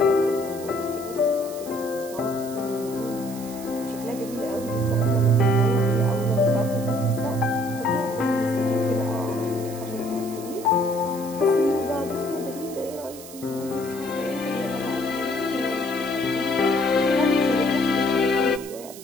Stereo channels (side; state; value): right; noise; hiss, 15 dB below the sound